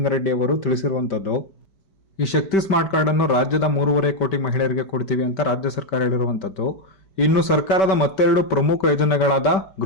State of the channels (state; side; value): late; right; 5.2 ms